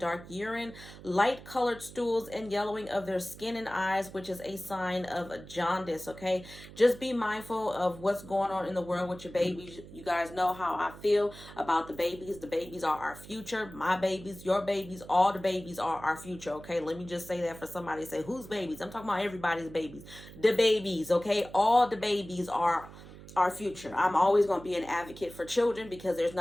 urine, light colored stools, and yellowing of their skin and eyes, which is a sign of jaundice. Okay, just be mindful of what's going on in the world with your babies. You guys know how I feel about the babies. The babies are our future. My babies, your babies, all the babies are our future. Okay, let me just say that for somebody to say, whose babies? I'm talking about everybody's babies. The babies. Okay, all the babies are our future. I'm always going to be an advocate for children because there's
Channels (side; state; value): right; noise; hum, 17 dB below the sound